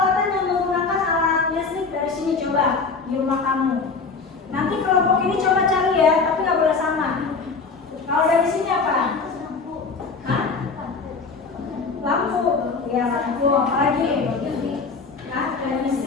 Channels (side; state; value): right; quieter; 4.6 dB